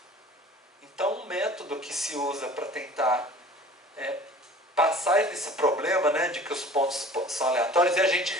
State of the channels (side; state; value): both; normal; correlation 0.44